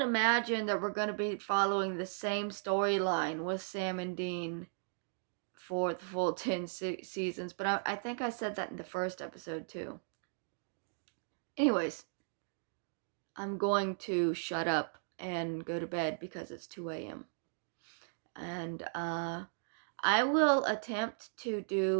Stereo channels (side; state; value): left; silent; digital silence